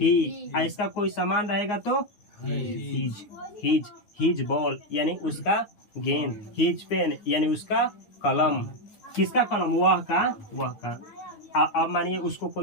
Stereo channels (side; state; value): right; late; 9.7 ms